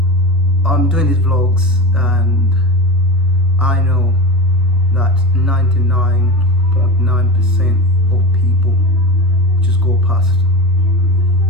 I'm doing these vlogs and I know that 99.9% of people just go past.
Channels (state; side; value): normal; both; correlation 0.26